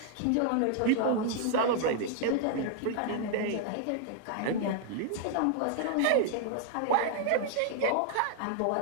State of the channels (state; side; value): different; both; correlation 0.00